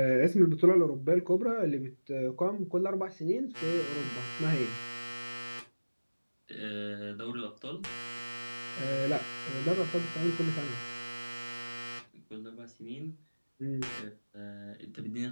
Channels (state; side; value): inverted; both; correlation -1.00